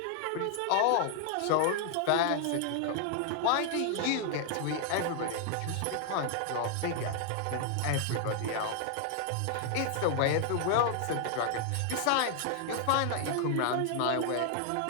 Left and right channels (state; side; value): different; both; correlation 0.00